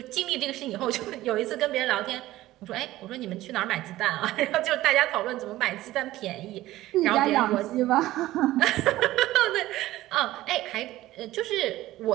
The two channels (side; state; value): left; quieter; 16.0 dB